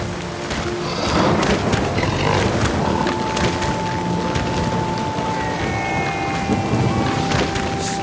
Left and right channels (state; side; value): identical; both; correlation 1.00